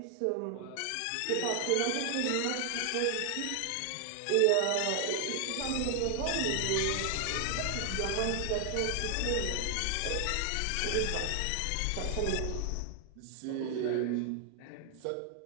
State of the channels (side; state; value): both; different; correlation 0.00